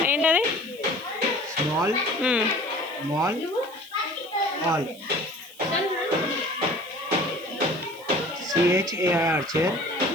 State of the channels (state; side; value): noise; right; hiss, 22 dB below the sound